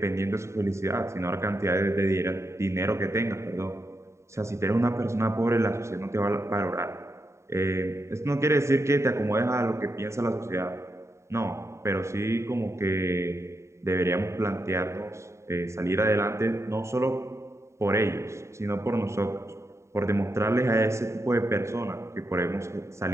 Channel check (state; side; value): late; left; 0.14 ms